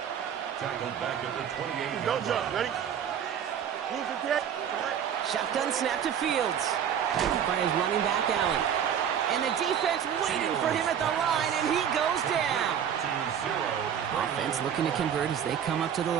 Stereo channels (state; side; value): quieter; left; 8.7 dB